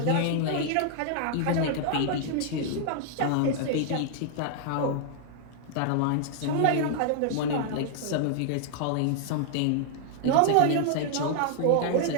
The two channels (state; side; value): different; both; correlation 0.00